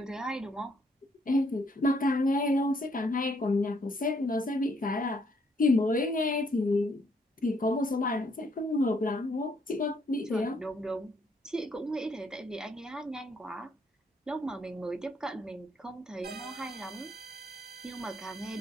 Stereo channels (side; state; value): both; normal; correlation 0.70